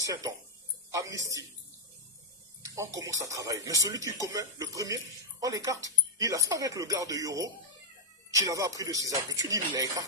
temps. Amnistie. On commence à travailler. Mais celui qui commet le premier, on l'écarte. Il a fait avec le garde Euro, qu'il avait appris de ses habitudes, il l'a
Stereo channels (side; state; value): both; normal; correlation -0.04